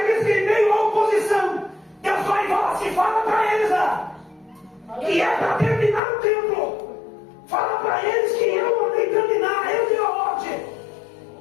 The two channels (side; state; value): right; drops out; at 6.0 s